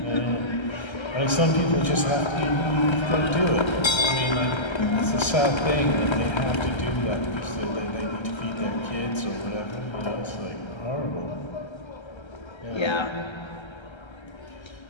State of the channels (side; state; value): right; late; 1.3 ms